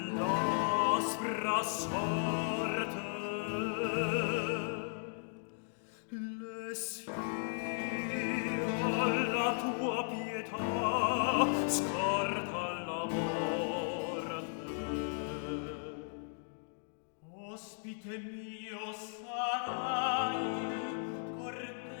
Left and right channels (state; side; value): silent; right; digital silence